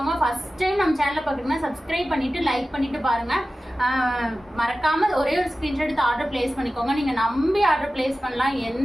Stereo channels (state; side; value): normal; both; correlation 0.95